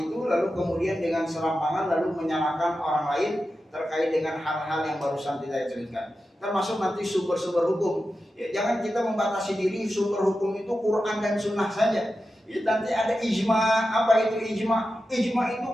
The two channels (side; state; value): both; normal; correlation 0.91